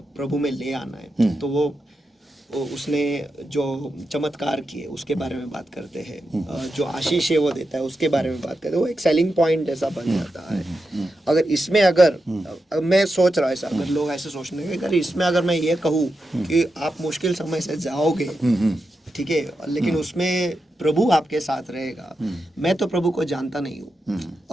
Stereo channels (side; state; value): both; normal; correlation 0.88